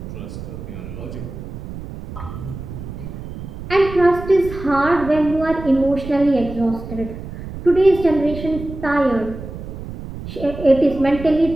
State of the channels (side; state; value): right; noise; rumble, 10 dB below the sound